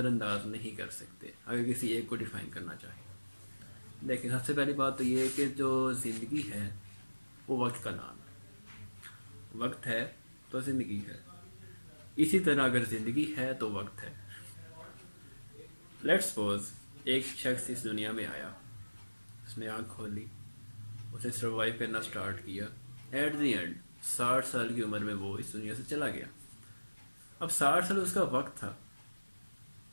انداز نہیں کر سکتے اگر کسی ایک کو ڈیفائن کرنا چاہیں. لیکن سب سے پہلی بات تو یہ ہے کہ جو زندگی ہے وہ وقت کا نام ہے. وقت ہے تو زندگی ہے، اسی طرح اگر زندگی ہے تو وقت ہے. لیٹس سپوز ایک شخص اس دنیا میں آیا، اس نے آنکھ کھولی، اسے سروائیو کرنا سٹارٹ کیا. ایٹ دی اینڈ 60 سال کی عمر میں وہ اس دنیا سے چلا گیا. اب 60 سال اس کا وقت تھا.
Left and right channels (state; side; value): inverted; both; correlation -1.00